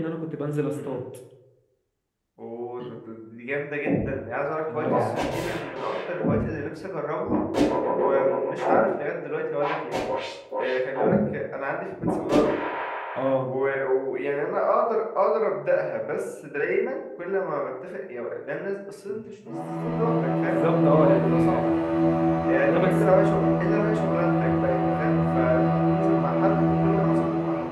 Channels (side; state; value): both; identical; correlation 1.00